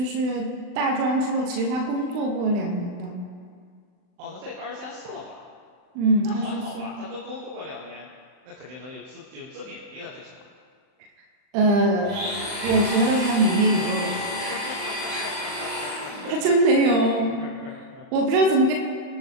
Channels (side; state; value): left; late; 39 ms